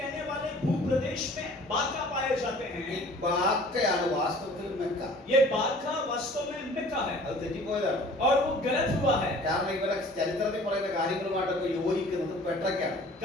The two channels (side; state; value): both; normal; correlation 0.49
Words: वाले भूप्रदेश में बाका पाए जाते ഈ हैं। ബാക്കയാണ് വാസ്തവത്തിൽ മെക്ക. ये बाका वास्तव में मेक्का है അത് തെറ്റിപ്പോയതാണ്. और वो गलत हुआ है। കാരണം ഇവരെ ചരിത്രത്തിൽ പറയുന്ന കാര്യങ്ങളുമായിട്ടൊക്കെ യോജിക്കുന്നത് പെട്രയ്ക്കാണ്.